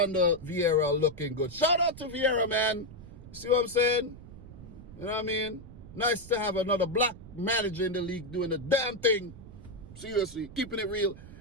Vieira looking good. Shout out to Vieira, man. You see what I'm saying? You know what I mean? Nice to have another black manager in the league doing the damn thing. Seriously, keeping it real.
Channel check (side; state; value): right; noise; rumble, 16 dB below the sound